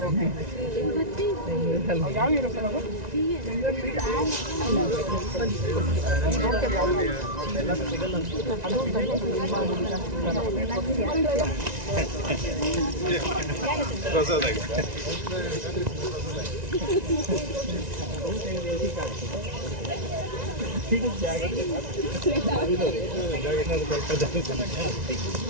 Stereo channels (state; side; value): late; left; 1.9 ms